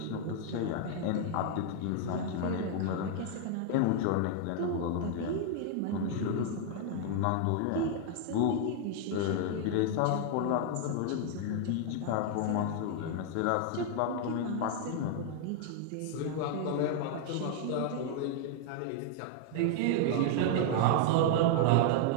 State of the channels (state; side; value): different; both; correlation 0.00